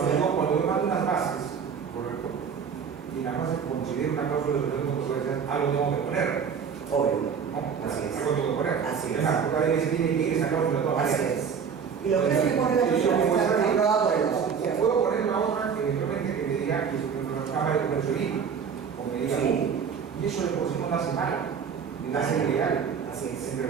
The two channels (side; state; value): left; quieter; 6.7 dB